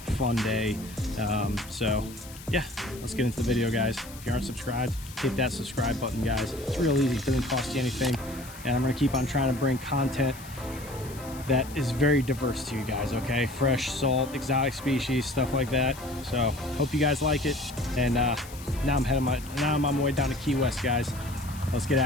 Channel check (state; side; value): noise; left; hiss, 17 dB below the sound